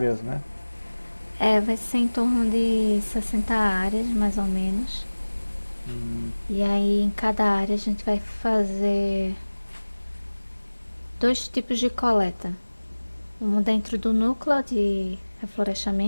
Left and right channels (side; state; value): both; inverted; correlation -1.00